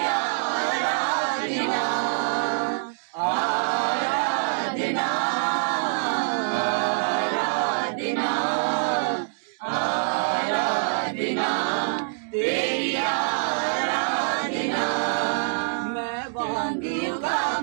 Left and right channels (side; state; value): left; silent; digital silence